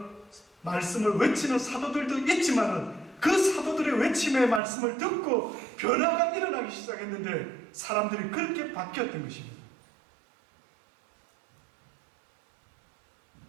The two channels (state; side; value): drops out; left; at 4.6 s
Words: 말씀을 외치는 사도들도 있지만은 그 사도들의 외침의 말씀을 듣고 변화가 일어나기 시작했는데 사람들이 그렇게 바뀌었던 것입니다.